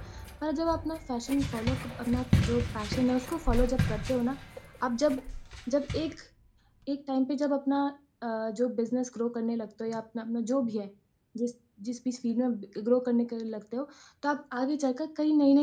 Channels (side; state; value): both; identical; correlation 1.00